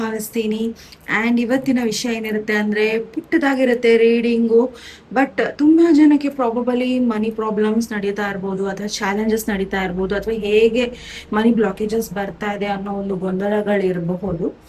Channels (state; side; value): identical; both; correlation 1.00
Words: ಆ್ಯಂಡ್ ಇವತ್ತಿನ ವಿಷಯ ಏನಿರುತ್ತೆ ಅಂದರೆ ಪುಟ್ಟದಾಗಿರುತ್ತೆ ರೀಡಿಂಗು. ಬಟ್ ತುಂಬ ಜನಕ್ಕೆ ಪ್ರಾಬಬಲಿ ಮನಿ ಪ್ರಾಬ್ಲಮ್ಸ್ ನಡೀತಾ ಇರ್ಬೋದು, ಅಥವಾ ಚಾಲೆಂಜಸ್ ನಡೀತಾ ಇರ್ಬೋದು, ಅಥವಾ ಹೇಗೆ ಮನಿ ಬ್ಲಾಕೇಜಸ್ ಬರ್ತಾ ಇದೆ ಅನ್ನೋ ಒಂದು ಗೊಂದಲಗಳಿರಬಹುದು.